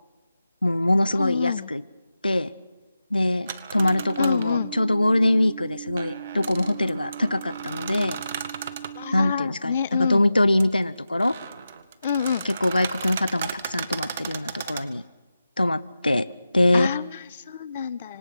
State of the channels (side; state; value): both; inverted; correlation -0.92